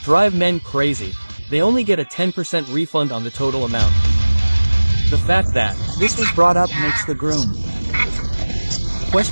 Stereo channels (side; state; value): both; inverted; correlation -1.00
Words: drive men crazy. They only get a 10% refund on the total amount. The fact that this was brought up makes the groom